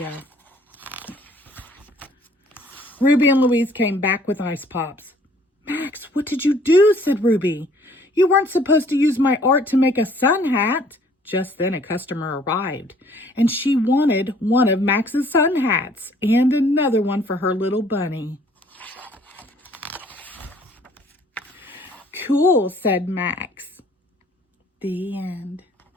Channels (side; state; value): both; normal; correlation 0.58